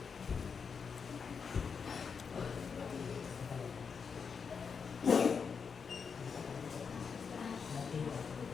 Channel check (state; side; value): quieter; right; 6.0 dB